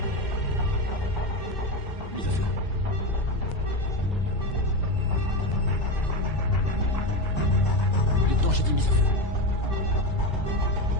Mise au feu. Lieutenant, j'ai dit mise à feu.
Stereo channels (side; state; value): right; late; 2.0 ms